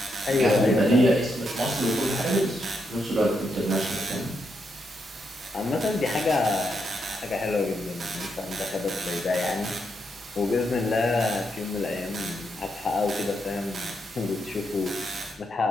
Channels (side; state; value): both; normal; correlation 0.81